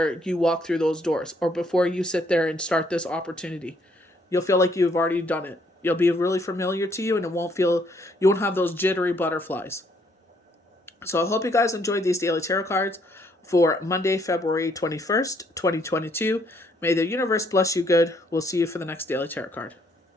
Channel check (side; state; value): both; normal; correlation 0.68